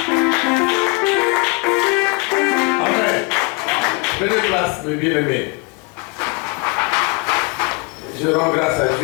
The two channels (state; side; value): quieter; right; 30.0 dB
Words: Amen. Prenez place, mes bien-aimés. Je rends grâce à